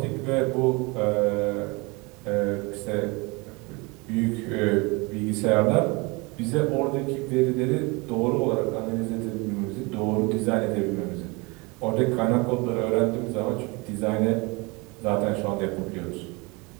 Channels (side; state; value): left; quieter; 27.1 dB